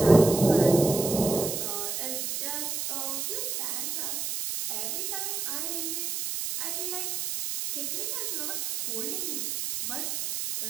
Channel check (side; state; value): right; noise; hiss, 2 dB below the sound